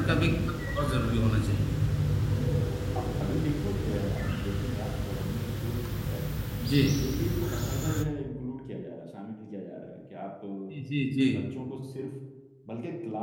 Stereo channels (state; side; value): identical; both; correlation 1.00